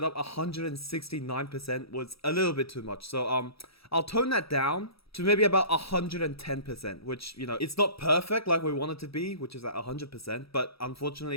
up 169% was a little bit too much. So, I'll tone that down to maybe about 110%, which, you know, it's not perfect like we want it to be, which is at 100%. But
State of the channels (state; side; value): late; right; 0.77 ms